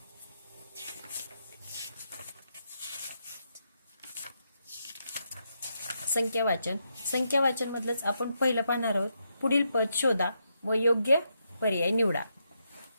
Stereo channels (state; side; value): inverted; both; correlation -0.81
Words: संख्या वाचन मधलंच आपण पहिलं पाहणार आहोत। पुढील पद शोधा व योग्य पर्याय निवडा।